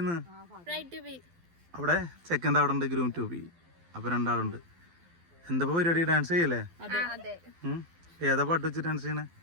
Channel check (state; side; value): late; left; 12 ms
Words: ഇന്ന്? അവിടെ ചെക്കൻ്റെ അവിടെ ഉണ്ട് ഗ്രൂം ടു ബി. അപ്പോൾ രണ്ടാളുണ്ട്. എന്താ പരിപാടി? ഡാൻസ് ചെയ്യല്ലേ? ഏതാ പാട്ട് വെച്ച് ഡാൻസ് ചെയ്യണേ?